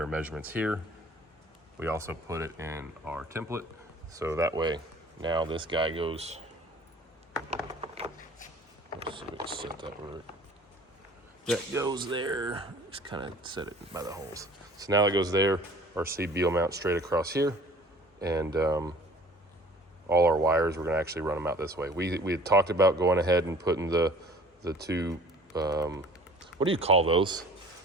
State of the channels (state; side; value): normal; both; correlation 0.49